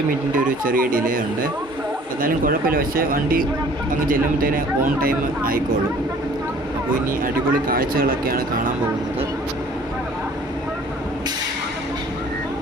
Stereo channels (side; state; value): both; normal; correlation 0.52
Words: മിനിറ്റിൻ്റെ ഒരു ചെറിയ ഡിലേ ഉണ്ട്. എന്നാലും കുഴപ്പമില്ല. പക്ഷേ വണ്ടി അങ്ങ് ചെല്ലുമ്പോഴത്തേന് ഓൺ ടൈം ആയിക്കോളും. അപ്പോൾ ഇനി അടിപൊളി കാഴ്ചകളൊക്കെയാണ് കാണാൻ പോകുന്നത്.